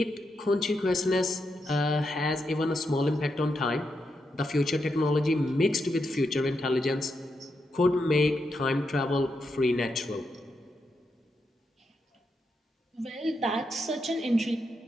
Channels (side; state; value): both; normal; correlation 0.84